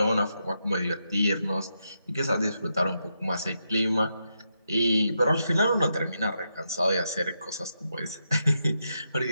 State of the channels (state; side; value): inverted; both; correlation -0.83